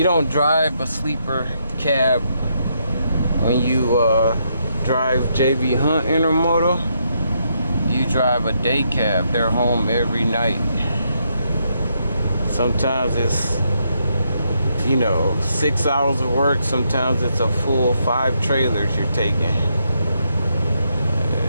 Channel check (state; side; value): inverted; both; correlation -0.78